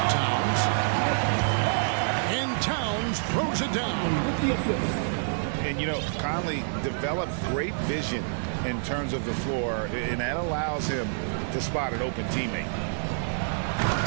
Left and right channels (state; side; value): silent; left; digital silence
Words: Towns. And Towns throws it down. And, you know, Conley developed great vision in terms of the floor, and that allows him to spot an open teammate.